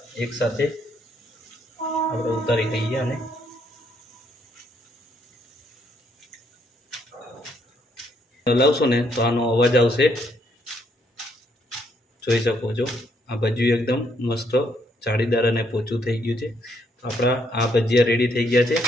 એકસાથે આપણે ઉતારી લઈએ. અને હલાવશો ને તો આનો અવાજ આવશે. જોઈ શકો છો આ ભજીયું એકદમ મસ્ત જાળીદાર અને પોચું થઈ ગયું છે. આપણા આ ભજીયા રેડી થઈ ગયા છે.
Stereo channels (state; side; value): normal; both; correlation 0.71